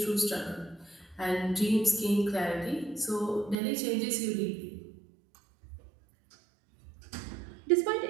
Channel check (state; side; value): drops out; left; at 3.6 s